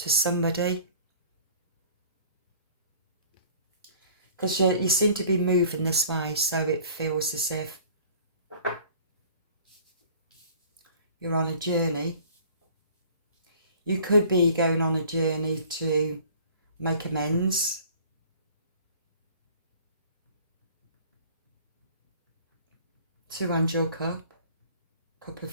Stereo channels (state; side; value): inverted; both; correlation -0.50